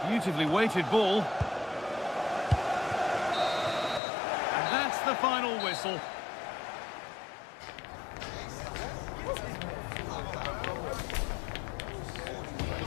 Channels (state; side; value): drops out; right; at 4.0 s